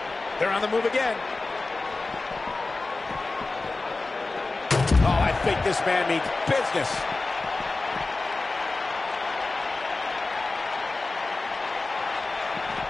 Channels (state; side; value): quieter; right; 3.4 dB